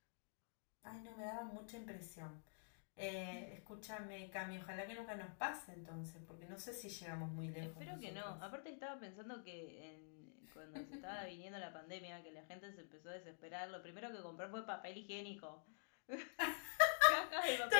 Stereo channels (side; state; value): right; silent; digital silence